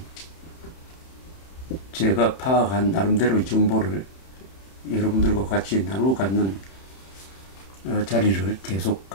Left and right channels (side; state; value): right; late; 31 ms